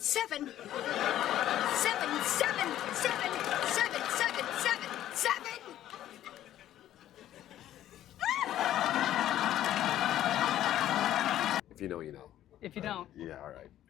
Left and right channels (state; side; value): quieter; right; 12.5 dB